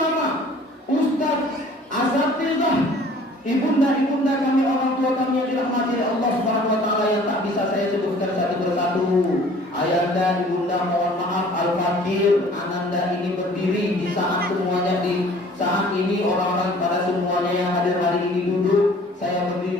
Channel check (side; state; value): both; normal; correlation 0.51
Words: ustaz, asatizah, ibunda-ibunda kami, orang tua kami yang dirahmati oleh Allah Subhanahu wa taala yang tak bisa saya sebutkan satu persatu. Ayanda, ibunda mohon maaf, Al-Fakir, Ananda ini berdiri di saat semuanya saat ini orang-orang pada semuanya yang hadir hari ini duduk. Saya